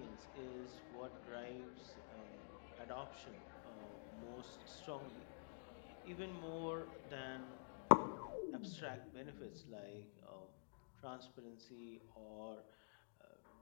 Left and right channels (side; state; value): right; silent; digital silence